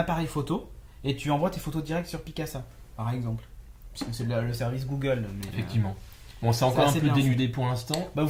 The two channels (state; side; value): identical; both; correlation 1.00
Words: photo, et tu envoies tes photos directes sur Picasa, par exemple. Parce que c'est le service Google. Mais, effectivement. Bon, c'est encore un peu bien dénudé pour l'instant. Bah, vous